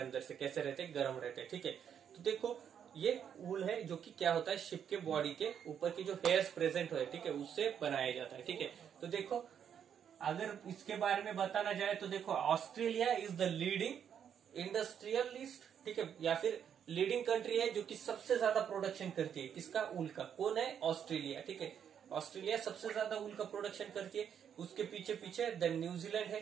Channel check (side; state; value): left; quieter; 8.4 dB